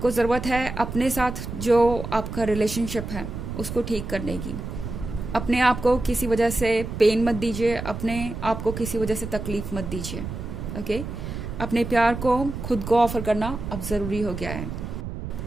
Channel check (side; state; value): right; noise; rumble, 7 dB below the sound